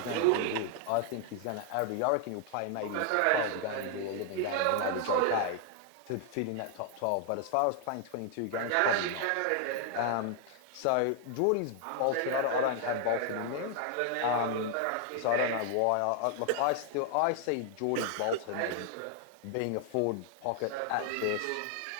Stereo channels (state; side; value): different; both; correlation 0.00